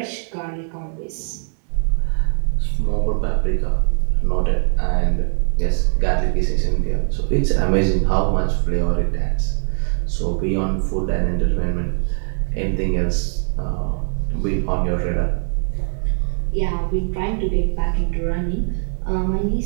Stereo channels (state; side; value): silent; left; 65 dB below the other